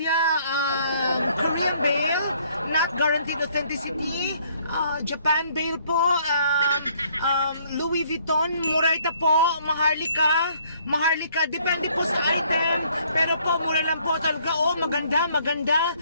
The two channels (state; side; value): inverted; both; correlation -0.63